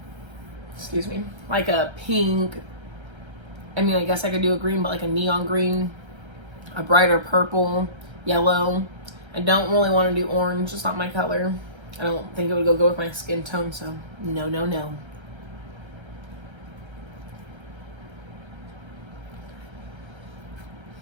excuse me, like a pink. I mean, I guess I could do a green, but like a neon green, a brighter purple, yellow. I don't really want to do orange. It's not my color. I don't think it would go with my skin tone, so no, no, no.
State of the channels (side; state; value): left; late; 1.3 ms